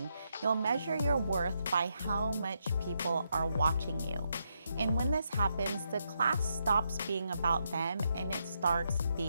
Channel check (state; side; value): inverted; both; correlation -0.81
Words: You'll measure your worth by how much people are watching you. And when this happens, the class stops being about them and it starts